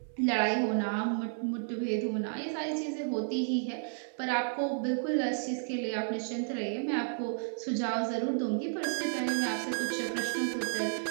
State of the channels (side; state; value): left; silent; 56 dB below the other